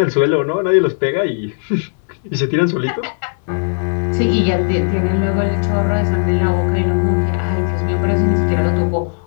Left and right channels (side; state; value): right; silent; digital silence